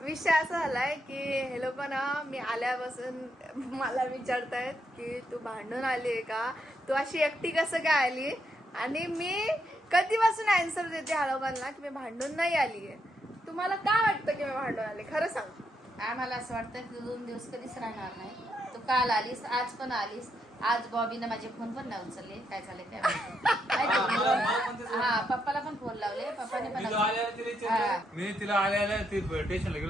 असा झालाय की हे लोक ना मी आल्यापासून मला विचारतायत की तू भांडून आली आहे का, तू अशी एकटी कसं काय आली. आणि मी कधीपासून आन्सर देते ह्या लोकांना की मी भांडून नाही आली आहे. तुम्हाला काय वाटतं की मी भांडून आले? खरं सांग. आम्हाला असं वाटतं की 2 दिवस कधीच राहणार नाही. तू काल आलीस, आज पण आलीस. आज बॉबीनं माझे फोन पण नाही उचलले. काय झाले काय माहिती. हा, पप्पाला पण फोन लावले, पप्पाने पण मी तिला आल्या ती स्टेशनला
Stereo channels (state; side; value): normal; both; correlation 0.79